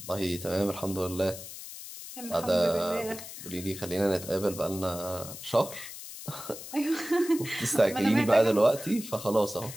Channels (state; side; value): noise; left; hiss, 12 dB below the sound